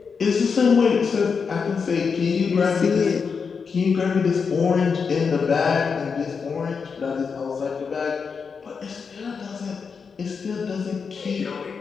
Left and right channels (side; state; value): right; quieter; 5.7 dB